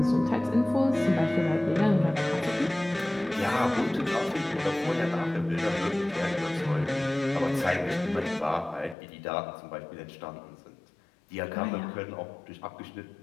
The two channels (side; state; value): right; drops out; at 9.0 s